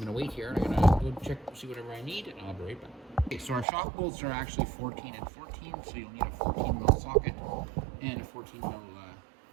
to wait here. I'm going to go check, see whatever I need, and I'll be right back. Okay, so our shock bolts are actually 14 and 14, so you'll need a 14mm socket and a 14mm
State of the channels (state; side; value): drops out; left; at 3.7 s